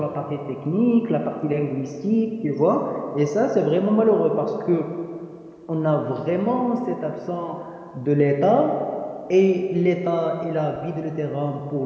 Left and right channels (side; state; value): both; identical; correlation 1.00